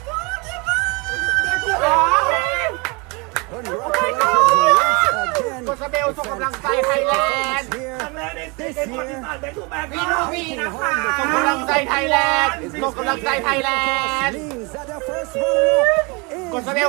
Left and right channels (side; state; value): left; quieter; 29.1 dB